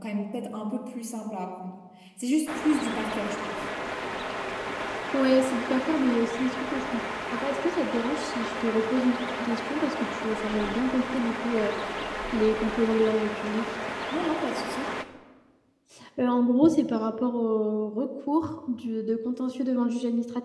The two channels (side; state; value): both; identical; correlation 1.00